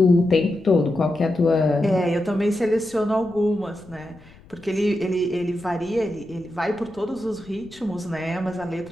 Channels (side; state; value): left; noise; rumble, 24 dB below the sound